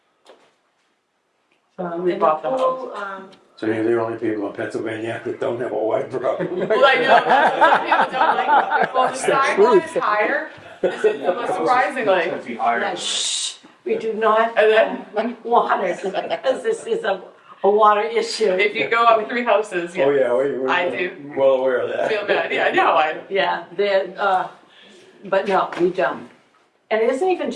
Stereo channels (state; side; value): identical; both; correlation 1.00